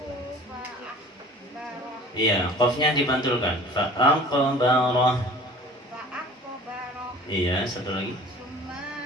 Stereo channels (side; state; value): both; normal; correlation 0.45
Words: Iya, qafnya dipantulkan. Fa'aqbarah. Iya, satu lagi.